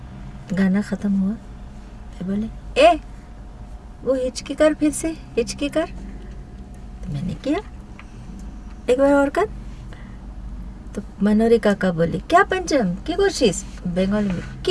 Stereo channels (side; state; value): both; identical; correlation 1.00